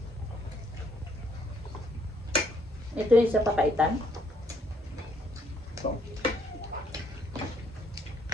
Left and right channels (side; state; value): both; normal; correlation 0.68